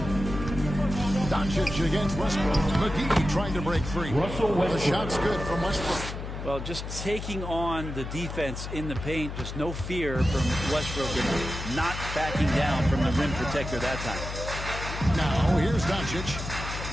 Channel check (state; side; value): noise; left; hum, 7 dB below the sound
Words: Doncic against Westbrook. McGee trying to break free. The shot's good from Westbrook. Well, just taking on the defense in the paint, just no fear from Westbrook and not backing down from the rim protector that time. Now, here's Doncic.